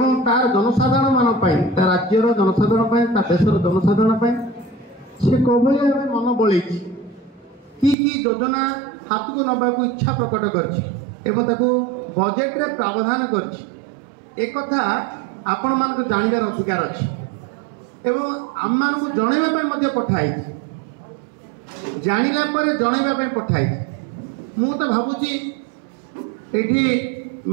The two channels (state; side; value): drops out; left; at 8.0 s